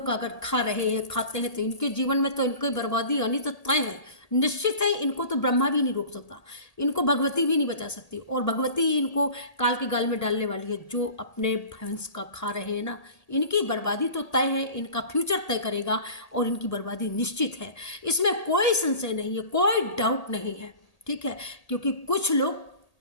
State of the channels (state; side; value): late; right; 1.8 ms